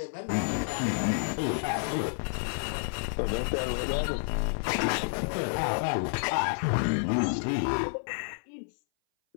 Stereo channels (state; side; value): silent; right; 57 dB below the other